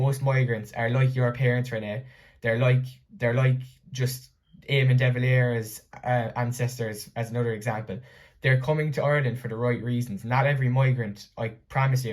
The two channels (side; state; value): both; identical; correlation 1.00